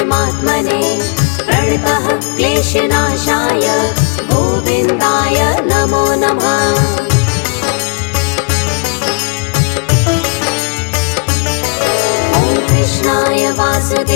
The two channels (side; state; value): right; quieter; 34.1 dB